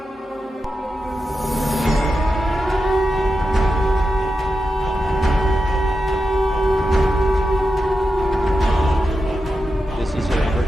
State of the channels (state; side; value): normal; both; correlation 0.89